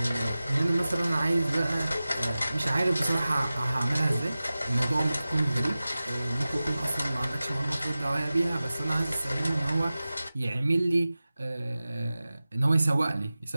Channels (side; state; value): both; inverted; correlation -0.96